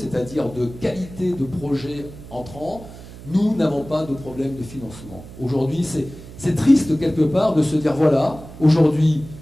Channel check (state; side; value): noise; right; hum, 16 dB below the sound